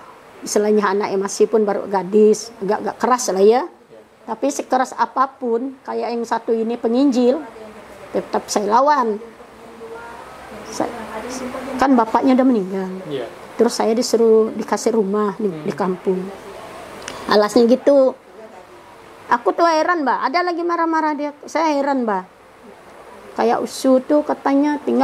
istilahnya anaknya masih pun baru gadis, agak keras lah ya. Tapi sekeras apapun, kayak yang satu ini penginjil, tetap saya lawan. Kan bapaknya udah meninggal. Terus saya dikasih rumah di kampung. Alasnya gitu. Aku tuh heran, Mbak. Ada lagi marah-marah dia. Saya heran, Mbak. Kayak Usu tuh katanya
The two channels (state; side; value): identical; both; correlation 1.00